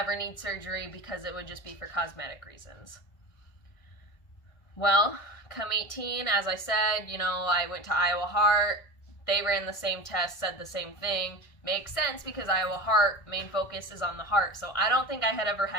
need surgery because it would just be for cosmetic reasons. Well, come 18, as I said, you know, I went to Iowa Heart. They ran the same test, said the same thing. Makes sense because Iowa Heart, main focus is on the heart. So I don't think I had ever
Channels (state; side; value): late; right; 1.6 ms